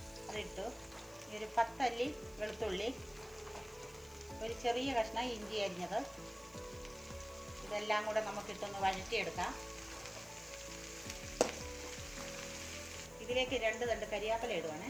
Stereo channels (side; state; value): left; noise; hiss, 22 dB below the sound